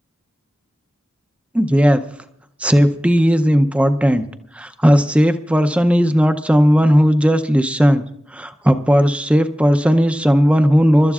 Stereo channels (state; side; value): normal; both; correlation 0.96